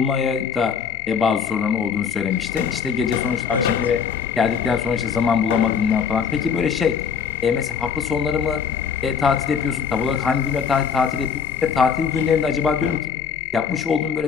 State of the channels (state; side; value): quieter; right; 6.7 dB